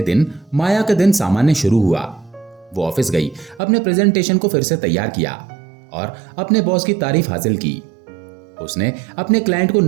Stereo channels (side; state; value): left; drops out; at 3.6 s